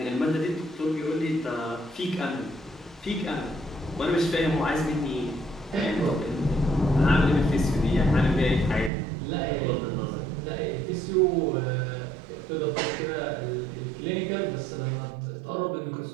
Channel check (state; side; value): drops out; left; at 8.9 s